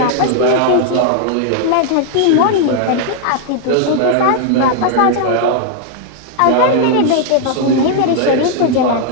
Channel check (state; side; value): different; both; correlation 0.00